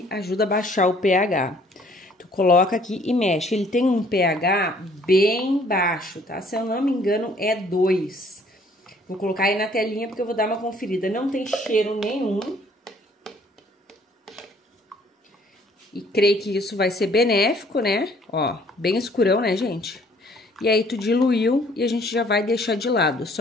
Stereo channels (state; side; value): normal; both; correlation 0.60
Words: ajuda a baixar o pH. Tu coloca aqui e mexe. Ele tem um pH bem baixo, tá? Se eu não me engano, é 2. Vou colocar aí na telinha porque eu vou dar uma conferida. Não tem cheiro nenhum. E creio que isso vai ser benéfico, né? Ó, bem escurão, né, gente? E aí, tu diluiu e a gente já vai deixar de lado.